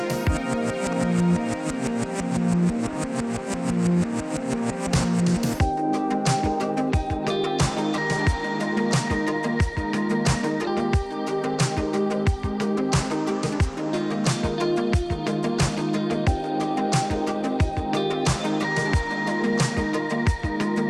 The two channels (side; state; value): both; identical; correlation 1.00